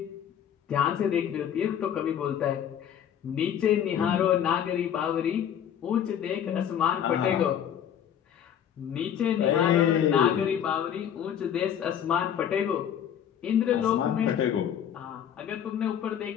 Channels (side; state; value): right; quieter; 9.3 dB